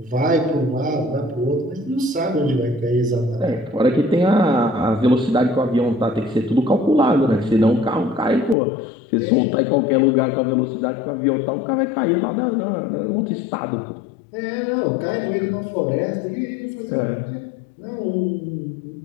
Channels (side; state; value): right; drops out; at 8.6 s